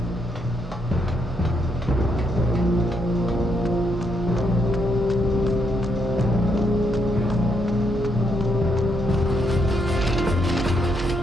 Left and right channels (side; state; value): both; normal; correlation 0.77